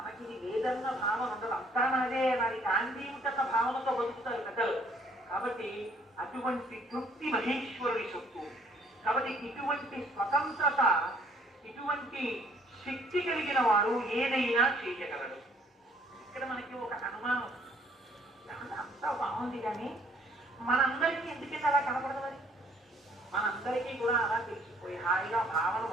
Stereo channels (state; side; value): normal; both; correlation 0.61